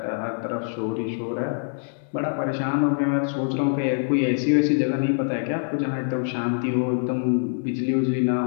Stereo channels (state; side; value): silent; right; digital silence